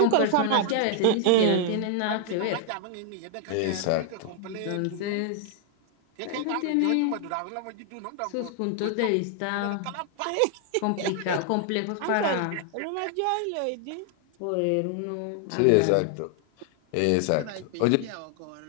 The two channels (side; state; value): both; different; correlation 0.00